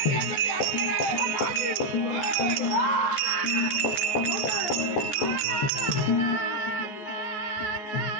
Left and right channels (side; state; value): right; late; 14 ms